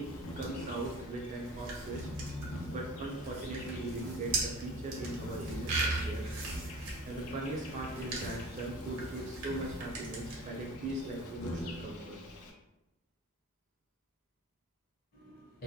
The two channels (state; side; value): normal; both; correlation 0.40